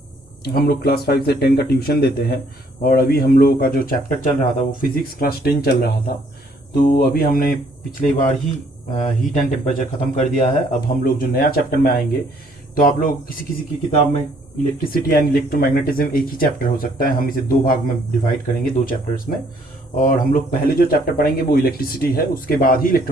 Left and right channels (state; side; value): normal; both; correlation 0.64